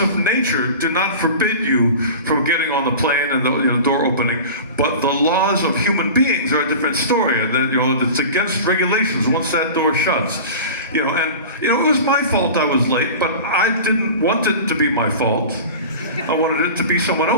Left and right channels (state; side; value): inverted; both; correlation -0.35